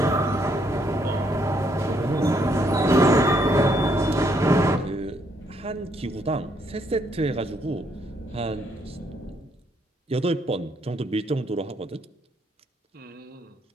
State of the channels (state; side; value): normal; both; correlation 0.71